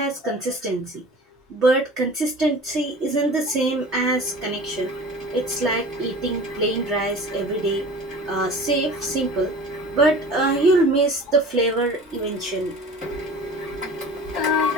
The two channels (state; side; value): normal; both; correlation 0.40